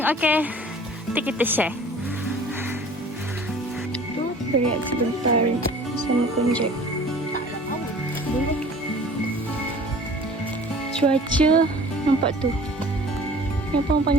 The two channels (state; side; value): normal; both; correlation 0.46